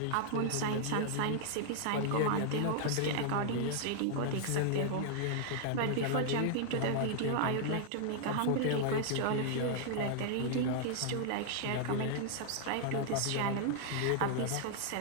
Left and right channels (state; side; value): different; both; correlation 0.00